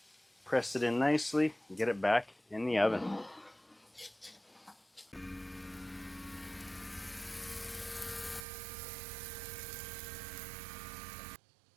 Press it in nicely and get it back in the oven.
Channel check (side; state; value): left; drops out; at 8.5 s